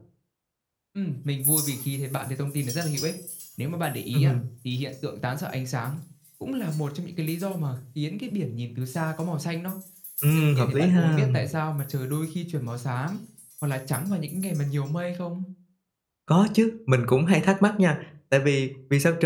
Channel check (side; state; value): both; identical; correlation 1.00